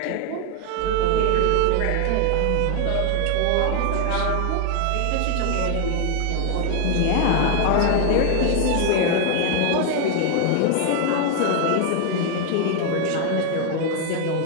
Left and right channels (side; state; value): both; different; correlation 0.00